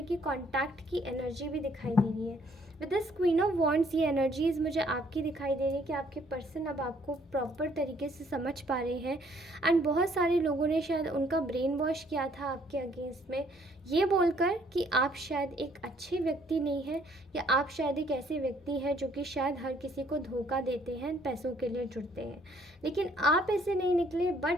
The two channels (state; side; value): normal; both; correlation 0.63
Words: की कांटेक्ट की एनर्जी भी दिखाई दे रही है। With this queen of wands ये एनर्जीज़ मुझे आपकी दिखाई दे रही है कि आपके पर्सन अब आपको प्रॉपर तरीके से समझ पा रहे हैं। एंड बहुत सारे लोगों ने शायद उनका ब्रेन वॉश किया था आपके अगेंस्ट में, ये बोलकर कि आप शायद एक अच्छे व्यक्ति नहीं हैं, या आप शायद एक ऐसे व्यक्ति हैं जो कि शायद हर किसी को धोखा देते हैं, पैसों के लिए जुड़ते हैं। लेकिन आप ऐसे नहीं निकले, बट